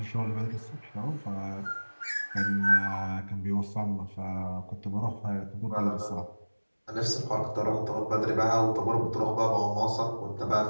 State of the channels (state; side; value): inverted; both; correlation -1.00